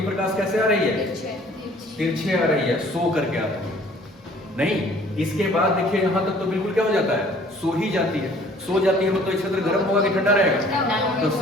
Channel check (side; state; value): both; normal; correlation 0.54